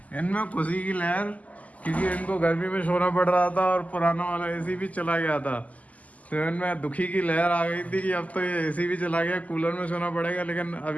इनमें खुशी की लहर, क्योंकि इनको गर्मी में सोना पड़ रहा था और पुराना वाला एसी भी चला गया था। तो इनमें दुखी की लहर आ गई थी कि अब तो ये एसी भी चला गया, कूलर में सोना पड़ेगा। लेकिन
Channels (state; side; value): late; right; 0.074 ms